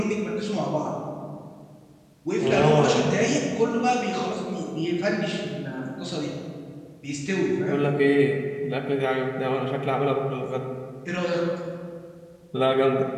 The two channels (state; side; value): identical; both; correlation 1.00